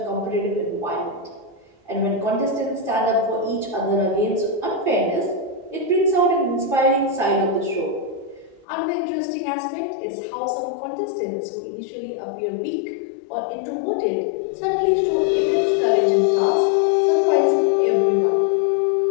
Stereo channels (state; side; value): drops out; right; at 8.7 s